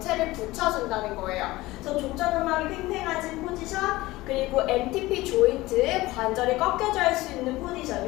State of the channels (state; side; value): quieter; right; 19.0 dB